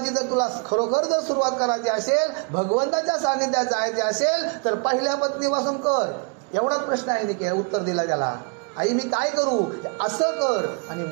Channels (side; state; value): left; quieter; 34.6 dB